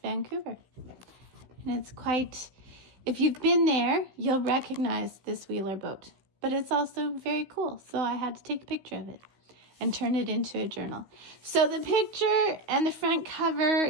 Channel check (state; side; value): late; left; 16 ms